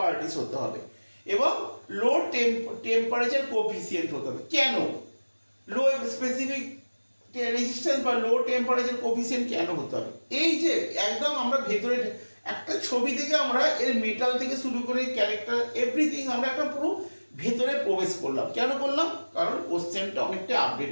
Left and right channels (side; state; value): both; inverted; correlation -1.00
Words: হতে হবে এবং লো টেম্পারেচার কোএফিসিয়েন্ট হতে হবে। কেন লো স্পেসিফিক রেজিস্ট্যান্স বা লো টেম্পারেচার কোএফিসিয়েন্ট কেন হতে হবে? এই যে একদম আমরা ভেতরে একটা ছবি থেকে আমরা এর মেটাল থেকে শুরু করে ক্যারেক্টার এভরিথিং আমরা একটা পুরো ভেতরে প্রবেশ করলাম। কেন করলাম? কারণ কোশ্চেনটা অনেকটা